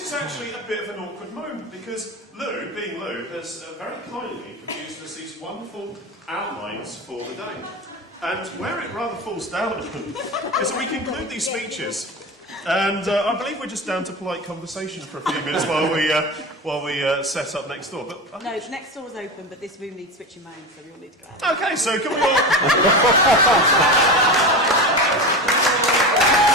is actually a bit of an awkward moment because Lou, being Lou, has very kindly produced us these wonderful outlines for the day. And where it rather falls down is that we conclude these speeches, and I believe we're just down to polite conversation for a few minutes while we set up next door. But no, next door's open, but this room needs switching mains, so we all need to go out. Okay, so can we all?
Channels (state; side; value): normal; both; correlation 0.25